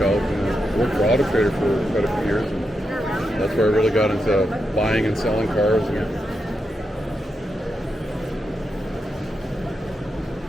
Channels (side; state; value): both; normal; correlation 0.86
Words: out. And I worked for Auto Trader for quite a few years, and that's where I really got into buying and selling cars. And